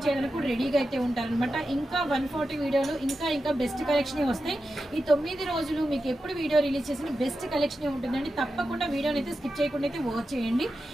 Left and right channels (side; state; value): both; normal; correlation 0.91